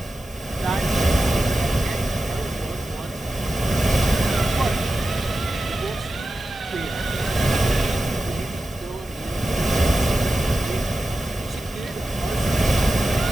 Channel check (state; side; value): normal; both; correlation 0.92